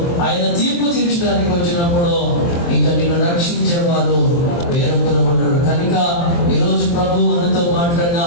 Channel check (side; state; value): right; late; 23 ms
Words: ఆయన తీర్పు తీర్చడానికి వచ్చినప్పుడు ఇంకా నిన్ను రక్షించేవారు వేరొకరు ఉండరు. కనుక ఈరోజు ప్రభు మనతో మాట్లాడిన